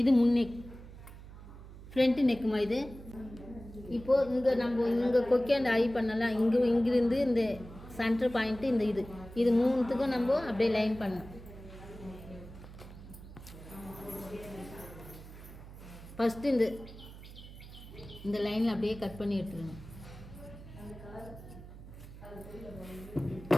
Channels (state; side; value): noise; right; hum, 15 dB below the sound